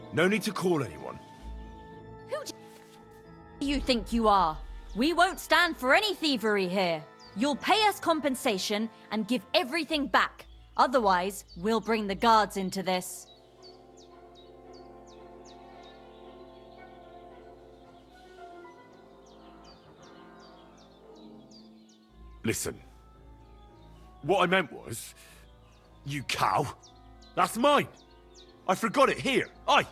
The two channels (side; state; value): both; identical; correlation 1.00